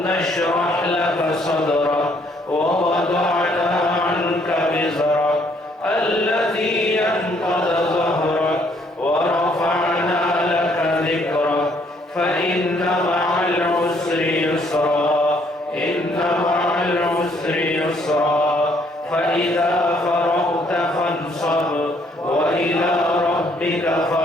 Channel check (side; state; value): both; normal; correlation 0.66